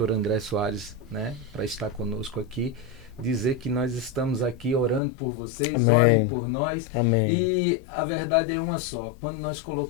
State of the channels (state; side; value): drops out; right; at 5.0 s